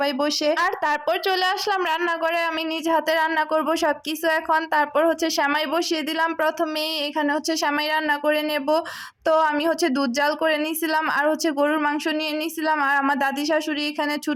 বসে। আর তারপর চলে আসলাম রান্নাঘরে, আমি নিজ হাতে রান্না করব সবকিছু এখন। তারপর সেমাই বসিয়ে দিলাম প্রথমেই, এখানে সেমাই রান্না করে নেব। তো আমি দুধ জাল করে নিয়েছিলাম, আর গরুর মাংস নিয়ে নিয়েছিলাম। আর আমার দাদি শাশুড়ি এখানে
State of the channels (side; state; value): both; identical; correlation 1.00